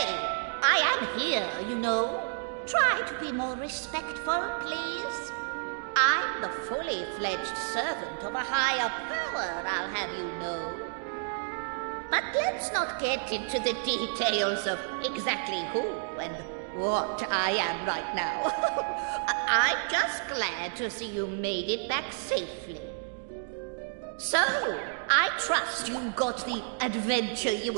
I am here, you know. Try to be more respectful, please. I'm the fully fledged servant of a higher power, I'll have you know. But let's not get into the details of exactly who and what I am right now. I'm just glad to see you made it back safely. So, I trust you got the adventure you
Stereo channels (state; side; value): silent; left; digital silence